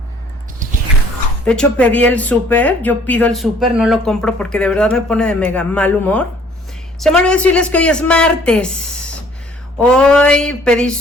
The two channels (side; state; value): both; normal; correlation 0.57